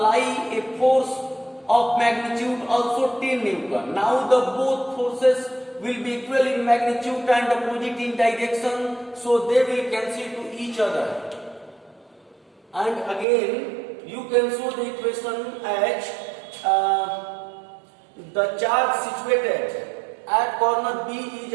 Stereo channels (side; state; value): left; drops out; at 13.2 s